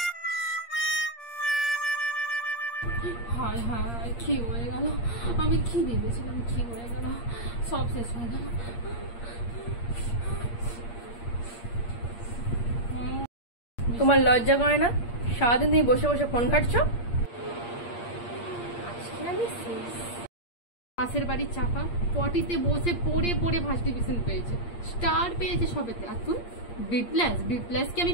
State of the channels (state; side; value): late; right; 8.6 ms